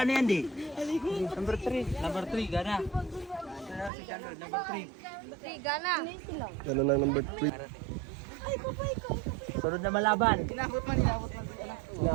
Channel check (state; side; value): drops out; left; at 3.9 s